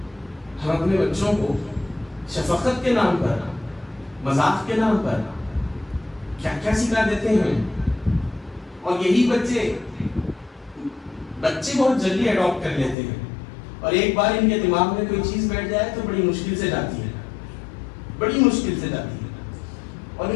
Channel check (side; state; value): right; drops out; at 13.0 s